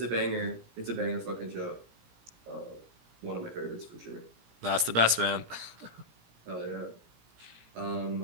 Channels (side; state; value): left; late; 17 ms